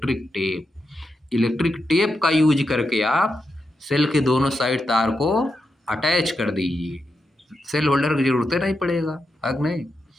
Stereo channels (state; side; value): normal; both; correlation 0.86